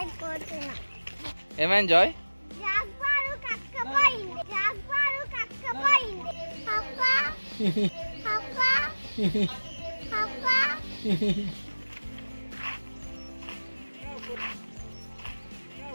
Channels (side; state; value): both; inverted; correlation -1.00